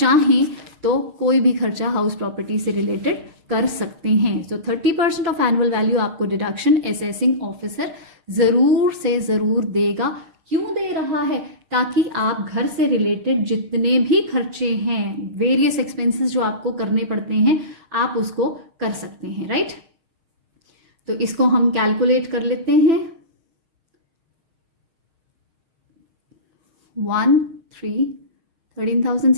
तो कोई भी खर्चा हाउस प्रॉपर्टी से रिलेटेड कर सकते हैं। सो 30% ऑफ एनुअल वैल्यू आपको डिडक्शन असेसिंग ऑफिसर ज़रूर से ज़रूर देगा। क्यों दे रहा है? ताकि आप घर से रिलेटेड जितने भी खर्चे हैं, वेरियस एक्सपेंसेस जो आपको करने पड़ते हैं, आप उसको कर सकते हैं, राइट। तो इसको हम कैलकुलेट कर लेते हैं।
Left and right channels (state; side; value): late; left; 6.5 ms